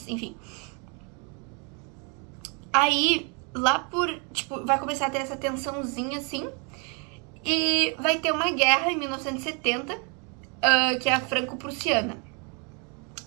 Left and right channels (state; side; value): quieter; left; 35.1 dB